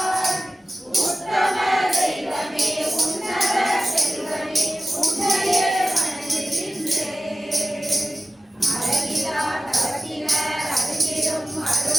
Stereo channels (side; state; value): both; normal; correlation 0.95